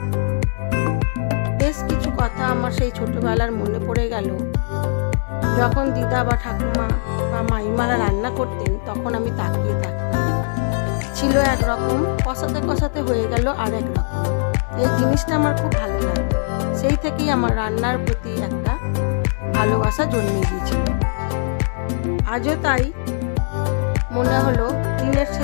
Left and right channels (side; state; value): right; silent; 65 dB below the other